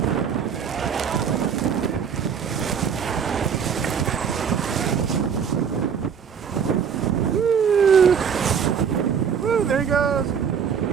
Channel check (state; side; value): quieter; left; 7.2 dB